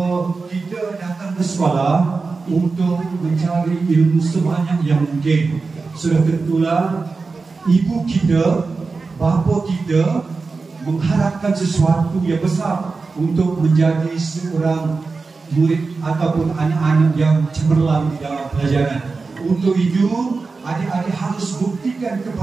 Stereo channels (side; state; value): left; quieter; 4.2 dB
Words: kita datang ke sekolah untuk mencari ilmu sebanyak yang mungkin. Sudah tentulah ibu kita, bapa kita mengharapkan sesuatu yang besar untuk menjadi seorang murid ataupun anak-anak yang cemerlang di dalam pelajaran. Untuk itu, adik-adik harus buktikan